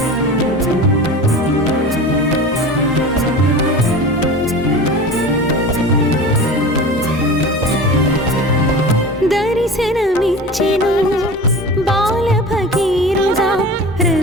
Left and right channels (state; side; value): normal; both; correlation 0.34